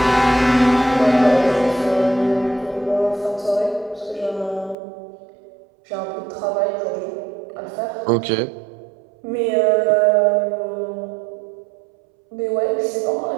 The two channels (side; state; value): left; drops out; at 4.8 s